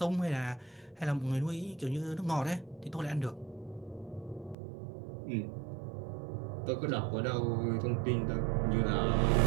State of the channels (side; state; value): left; drops out; at 4.5 s